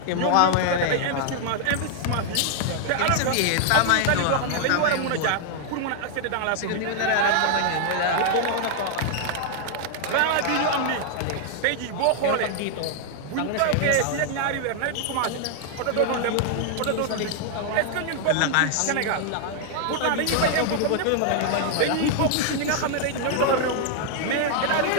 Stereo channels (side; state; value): both; different; correlation 0.00